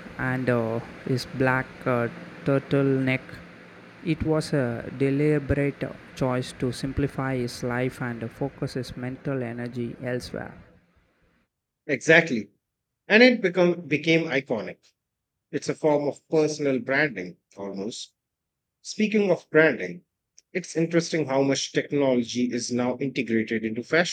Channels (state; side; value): identical; both; correlation 1.00